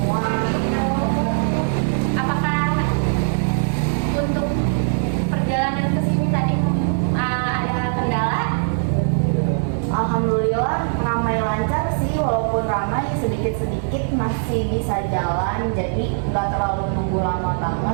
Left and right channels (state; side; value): silent; left; digital silence